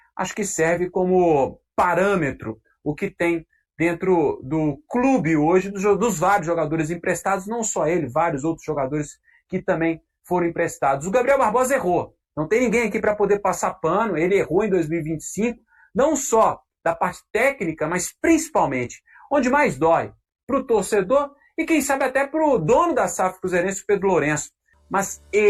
acho que serve como parâmetro o que tem dentro do clube hoje, dos vários jogadores emprestados, não só ele, vários outros jogadores que também foram emprestados. O Gabriel Barbosa errou, não tem ninguém aqui para poder passar pano, ele errou em 2025, não só da parte técnica, mas principalmente, onde mais dói, para o torcedor e quem sabe até para o dono da SAF cruzeirense, Pedro Lourenço. Mas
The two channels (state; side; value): identical; both; correlation 1.00